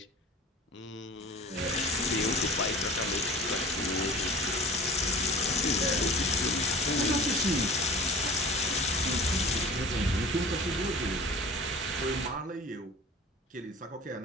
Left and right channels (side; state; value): both; normal; correlation 0.41